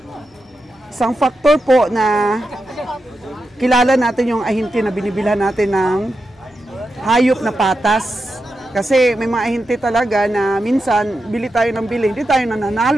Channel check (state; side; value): normal; both; correlation 0.88